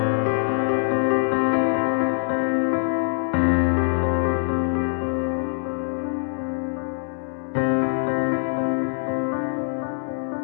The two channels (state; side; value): silent; right; digital silence